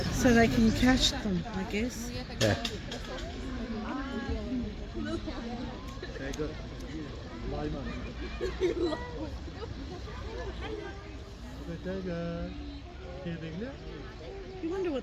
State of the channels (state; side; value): identical; both; correlation 1.00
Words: so they can catch them, I guess. Yeah. You wonder